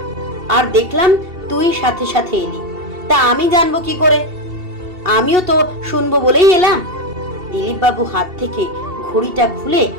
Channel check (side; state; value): left; late; 2.7 ms